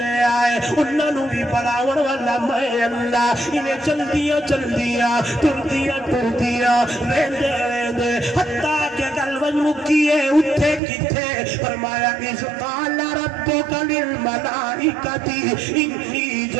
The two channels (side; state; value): left; drops out; at 10.8 s